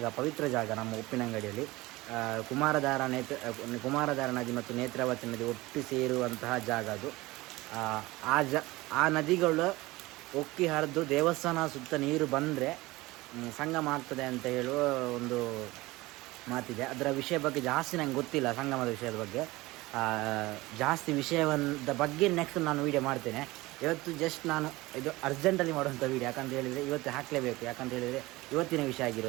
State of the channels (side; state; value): left; quieter; 20.3 dB